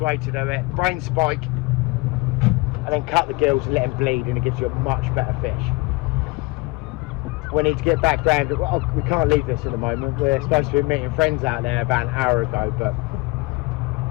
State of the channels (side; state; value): right; quieter; 24.2 dB